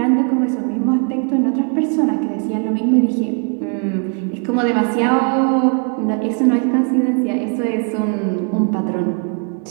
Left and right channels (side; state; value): left; quieter; 38.0 dB